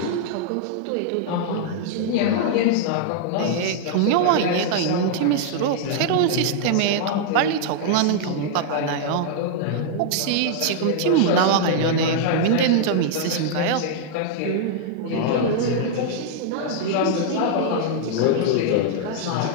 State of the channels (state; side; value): different; both; correlation -0.01